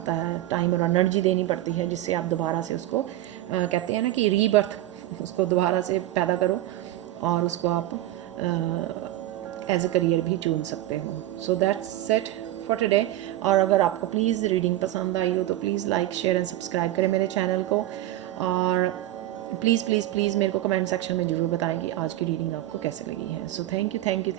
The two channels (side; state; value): left; quieter; 14.8 dB